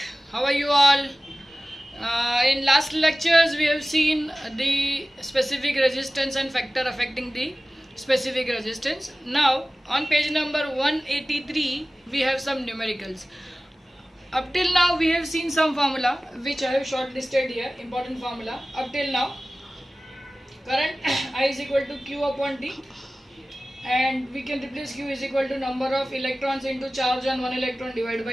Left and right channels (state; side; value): normal; both; correlation 0.97